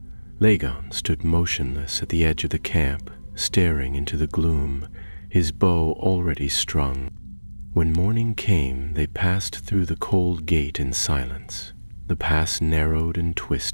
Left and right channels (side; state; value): both; inverted; correlation -1.00